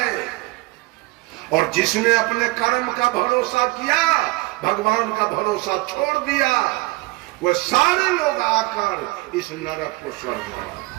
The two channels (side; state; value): left; quieter; 22.2 dB